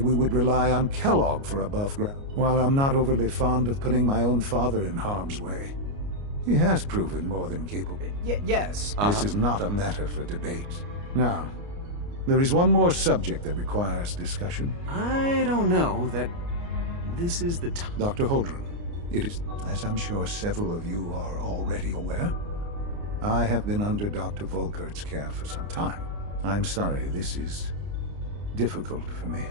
would rely on Kellogg for above ground. While I'm not overly fond of putting my own father in harm's way, he has proven more than capable. Yes. This is not a matter for debate. Now, there is one more subject that requires discussion. I don't know that this is the time. Dr. Holdren, it is, as I'm sure several of you are already aware, I have been under Dr. Volkert's care for some time. I'm sorry, this is difficult for me.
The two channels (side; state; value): left; late; 29 ms